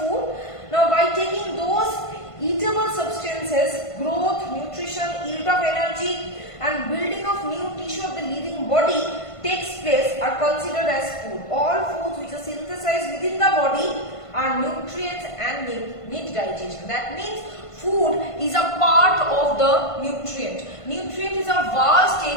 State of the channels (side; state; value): right; late; 1.5 ms